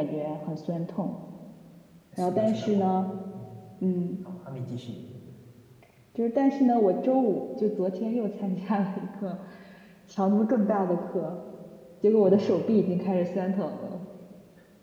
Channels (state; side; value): identical; both; correlation 1.00